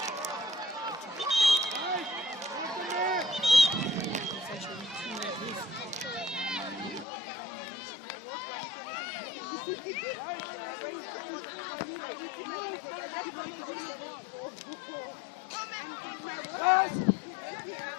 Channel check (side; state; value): right; drops out; at 7.1 s